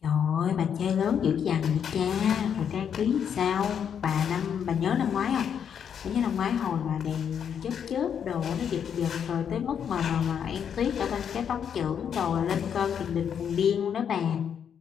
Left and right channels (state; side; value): quieter; right; 8.0 dB